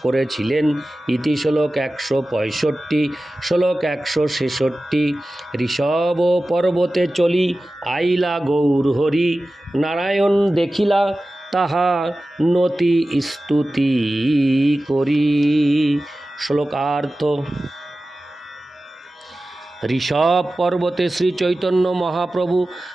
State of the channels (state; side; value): normal; both; correlation 0.95